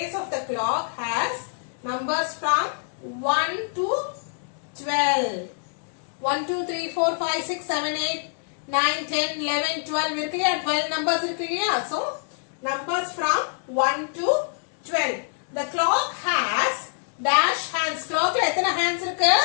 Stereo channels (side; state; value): right; silent; digital silence